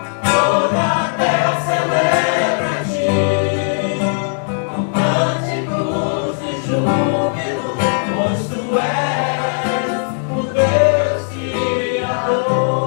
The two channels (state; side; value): silent; right; digital silence